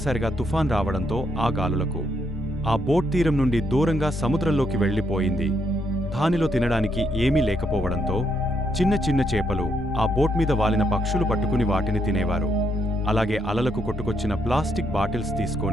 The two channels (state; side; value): normal; both; correlation 0.76